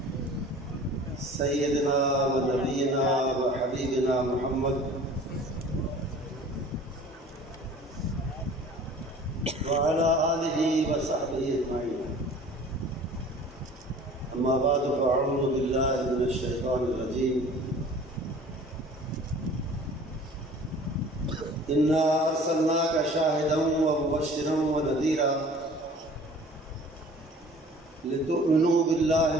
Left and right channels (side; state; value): both; normal; correlation 0.46